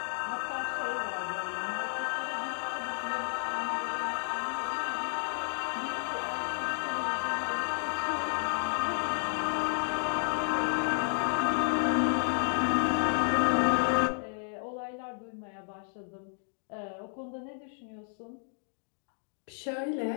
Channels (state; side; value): silent; right; digital silence